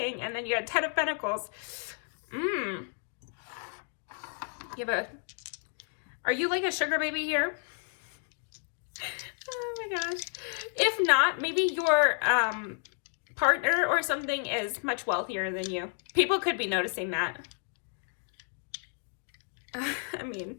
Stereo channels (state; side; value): silent; right; 55 dB below the other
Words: And then you had 10 of Pentacles. You have are you like a sugar baby here? Oh my gosh. If not, maybe your partner or something is much wealthier than you. People could be noticing that. I mean,